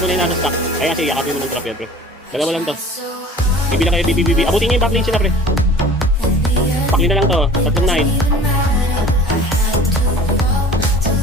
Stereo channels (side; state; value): both; normal; correlation 0.44